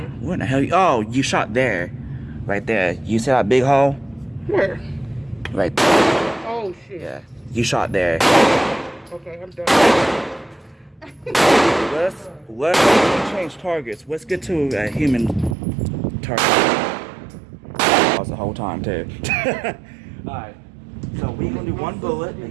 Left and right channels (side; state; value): left; drops out; at 15.6 s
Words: What the hell? Oh, you shot there. Right there. You see that big hole? Where? Right there. Oh, shit. Yeah. You shot there. Okay, I'm done. Let's change targets. Let's get to a human target. That was the whole time too. Alright. So we're gonna do 1 bullet